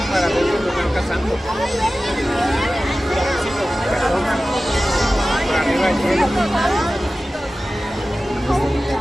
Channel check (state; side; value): normal; both; correlation 0.96